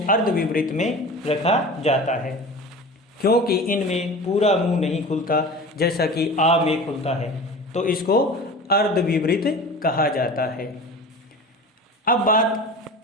अर्ध विवृत में रखा जाता है, क्योंकि इनमें पूरा मुंह नहीं खुलता जैसा कि आ में खुलता है, तो इसको अर्ध विवृत कहा जाता है। अब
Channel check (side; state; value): both; normal; correlation 0.35